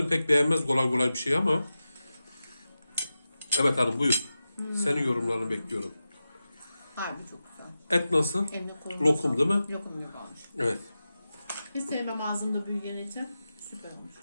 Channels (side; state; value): both; inverted; correlation -0.93